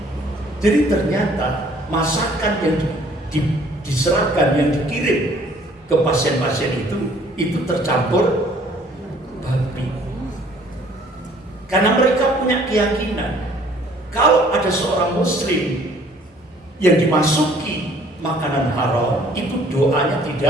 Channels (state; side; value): normal; both; correlation 0.57